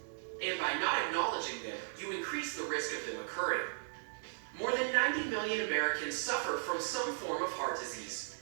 and by not acknowledging them, you increase the risk of them occurring. More than 90 million Americans suffer from some form of heart disease,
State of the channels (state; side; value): silent; left; digital silence